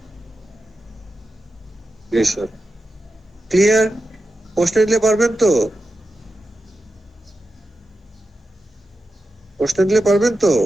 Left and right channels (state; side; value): normal; both; correlation 0.91